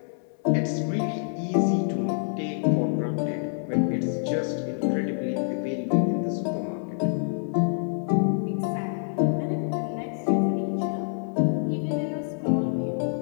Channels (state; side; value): silent; right; 60 dB below the other